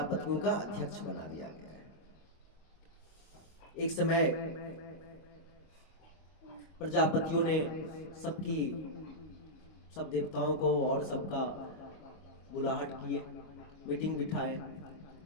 का अध्यक्ष बना दिया गया है। एक समय प्रजापतियों ने सब देवताओं को और सबका बुलाहट किए, मीटिंग बिठाए।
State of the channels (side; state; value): right; late; 25 ms